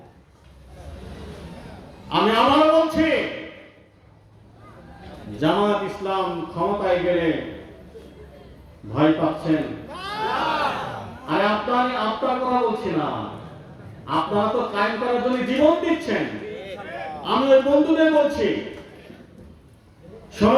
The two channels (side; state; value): both; identical; correlation 1.00